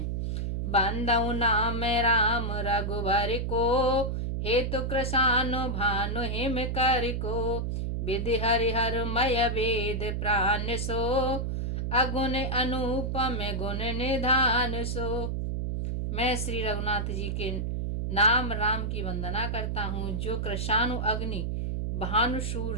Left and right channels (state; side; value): noise; right; hum, 1 dB below the sound